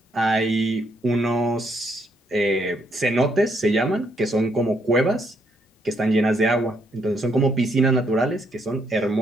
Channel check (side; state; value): both; normal; correlation 0.73